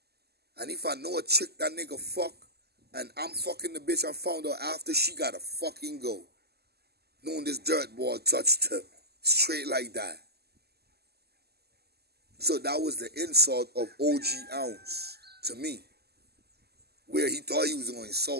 And if I know a chick that nigga fuck, and I'm fucking the bitch I found out after, she gotta fucking go. Knowing this dirt ball touched her. Straight like that. So that was the insult of OG Ounce to me. Where he thought he was going to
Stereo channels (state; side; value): late; left; 0.46 ms